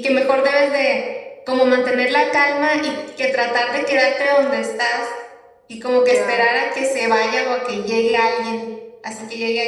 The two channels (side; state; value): both; identical; correlation 1.00